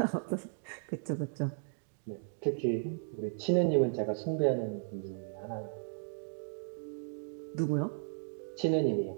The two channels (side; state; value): left; silent; digital silence